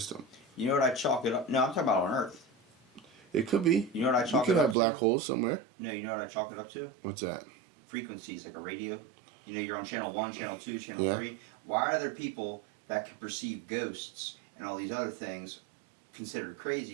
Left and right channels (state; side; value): drops out; left; at 4.8 s